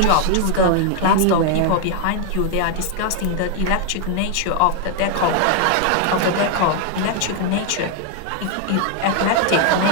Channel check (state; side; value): different; both; correlation 0.00